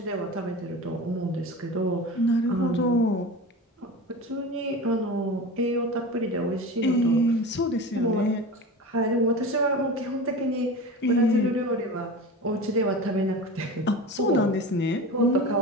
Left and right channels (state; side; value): normal; both; correlation 0.30